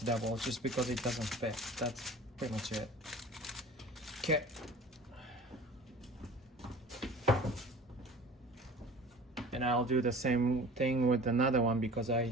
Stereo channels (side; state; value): both; normal; correlation 0.43